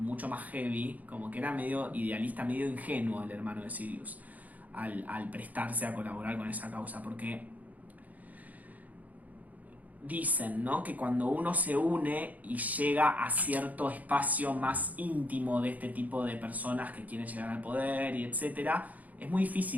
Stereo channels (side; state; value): left; late; 0.077 ms